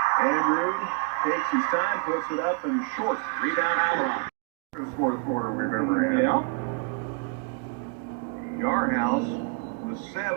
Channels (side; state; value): left; quieter; 31.2 dB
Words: Andrew takes his time, puts it up and short. Rebound Altamont. This fourth quarter we've ever had. Yeah. Yarhouse with